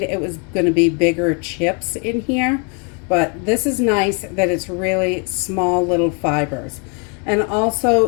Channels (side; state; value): right; quieter; 35.8 dB